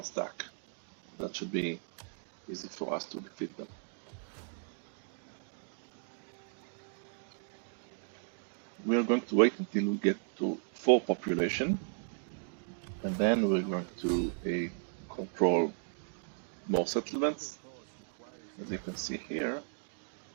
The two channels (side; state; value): left; silent; digital silence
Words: stack. That should be easy for us to defeat them. We are going to wait until we get to full population, and then we're going to control more settlements, as you can see here.